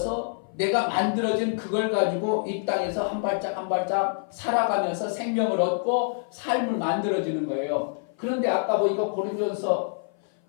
내가 만들어진 그걸 가지고 이 땅에서 한 발짝 한 발짝 살아가면서 생명을 얻고 삶을 만들어지는 거예요. 그런데 아까 보니까 고린도전서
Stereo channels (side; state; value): right; silent; 56 dB below the other